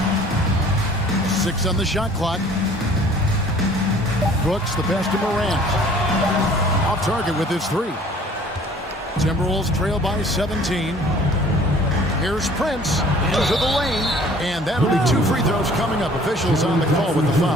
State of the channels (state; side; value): normal; both; correlation 0.52